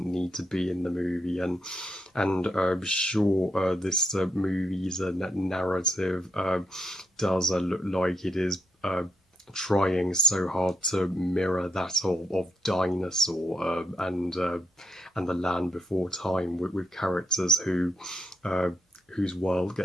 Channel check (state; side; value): normal; both; correlation 0.78